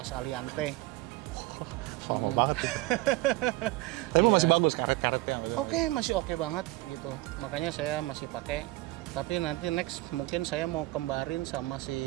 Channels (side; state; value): left; quieter; 19.5 dB